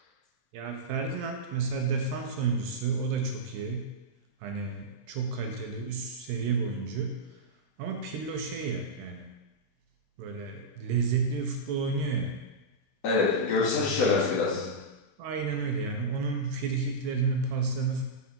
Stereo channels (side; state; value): both; normal; correlation -0.10